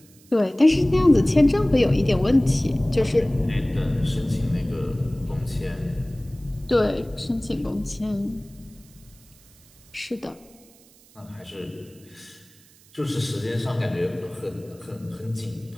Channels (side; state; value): right; noise; hiss, 27 dB below the sound